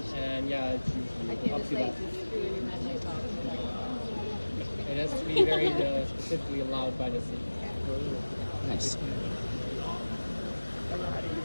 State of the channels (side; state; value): both; inverted; correlation -1.00